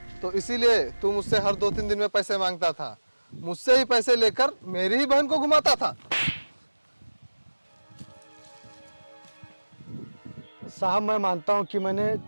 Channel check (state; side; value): inverted; both; correlation -1.00